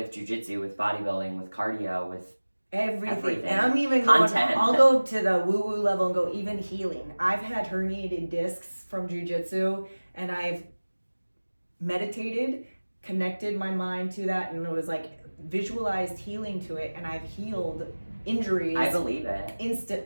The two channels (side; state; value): both; inverted; correlation -1.00